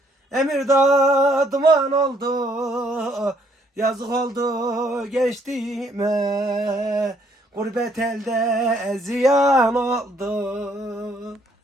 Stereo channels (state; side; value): normal; both; correlation 0.67